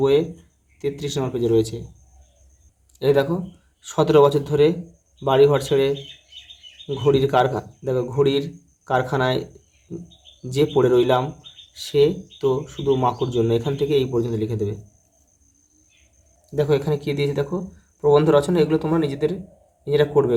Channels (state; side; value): identical; both; correlation 1.00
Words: বইয়ে 33 পেজে রয়েছে। এই দেখো 17 বছর ধরে বাড়িঘর ছেড়ে ঘড়ির কারখানায় যে পড়ে রইলাম, সে তো শুধু মাকুর জন্য। এখান থেকে এই পর্যন্ত লিখে দেবে। দেখো এখানে কী দিয়েছে, দেখো প্রবন্ধ রচনা, এগুলো তোমরা নিজেরা করবে